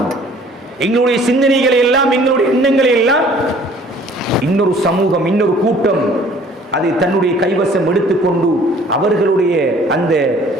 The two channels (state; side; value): normal; both; correlation 0.54